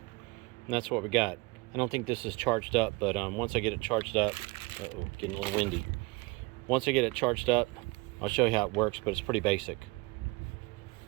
And that's what we got. I don't think this is charged up, but once I get it charged up, uh-oh, getting a little windy. Once I get it charged up, I'll show you how it works, but it's pretty basic,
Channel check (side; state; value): left; quieter; 25.7 dB